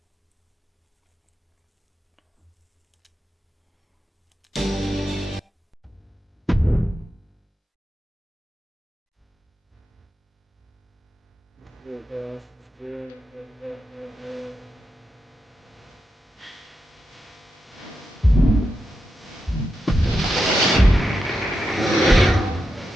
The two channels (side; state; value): both; normal; correlation 0.87